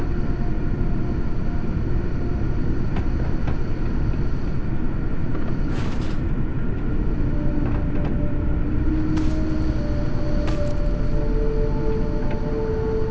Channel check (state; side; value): identical; both; correlation 1.00